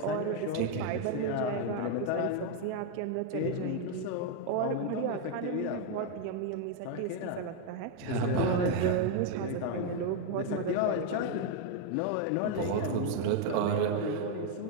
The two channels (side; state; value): both; different; correlation 0.01